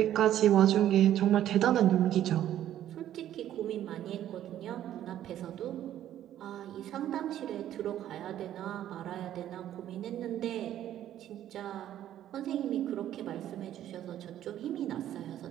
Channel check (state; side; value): quieter; left; 11.8 dB